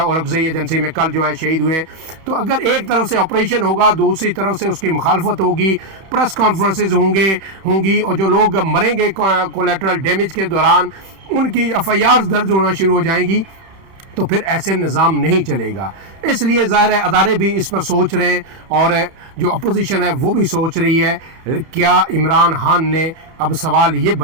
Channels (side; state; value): left; late; 31 ms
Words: औरंगज़ई एजेंसी में कल जो है शहीद हुए। तो अगर एक तरफ से ऑपरेशन होगा, दूसरी तरफ से उसकी मुखालफत होगी, प्रेस कॉन्फ्रेंसेज होंगी और जो लोग मरेंगे कोलेटरल डैमेज के दौरान उनकी FIRs दर्ज होना शुरू हो जाएंगी, तो फिर ऐसे निज़ाम नहीं चलेगा। इसलिए ज़ाहिर है अदारे भी इस पर सोच रहे हैं और जो अपोजिशन है वो भी सोच रही है क्या इमरान खान ने, अब सवाल ये